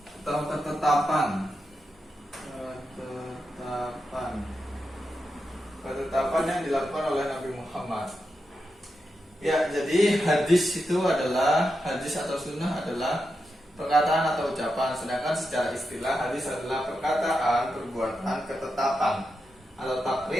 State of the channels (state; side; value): normal; both; correlation 0.87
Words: atau ketetapan yang dilakukan oleh Nabi Muhammad. Ya, jadi hadis itu adalah, hadis atau sunnah adalah perkataan atau ucapan. Sedangkan secara istilah hadis adalah perkataan, perbuatan, ketetapan atau